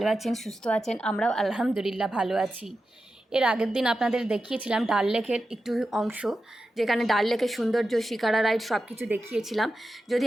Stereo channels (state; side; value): normal; both; correlation 0.91